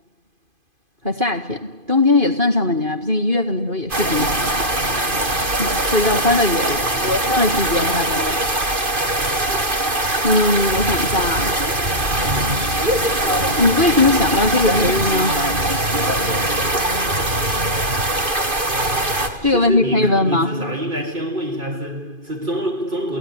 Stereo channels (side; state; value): left; late; 2.5 ms